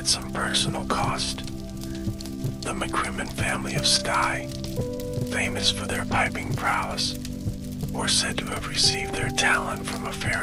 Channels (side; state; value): both; identical; correlation 1.00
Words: some personal cost. The McCrimmon family of Skye, famous for their piping prowess, were said to have received their talent from a